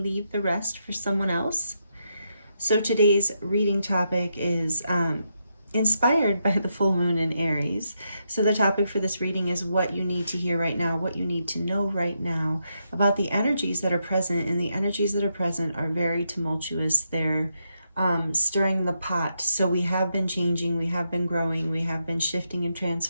leave the rest for someone else. So today's reading topic is inspired by the full moon in Aries. So the topic for this reading is what you need to hear right now, what you need to know right now about the energies that are present. And the energies that are present are very tumultuous. They're stirring the pot. So we have been changing, we have been growing, we have been shifting and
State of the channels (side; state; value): both; inverted; correlation -0.82